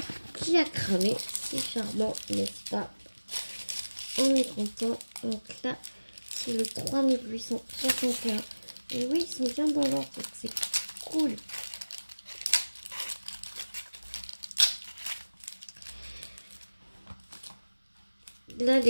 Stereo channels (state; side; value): inverted; both; correlation -1.00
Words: qui a cramé. C'est charmant, n'est-ce pas? On est content. Donc là, c'est le 3861. Et oui, ils sont bien dans l'ordre, donc c'est cool. Là,